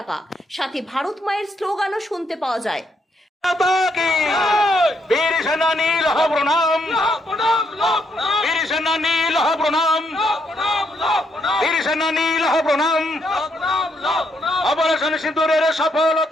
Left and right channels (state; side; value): normal; both; correlation 0.75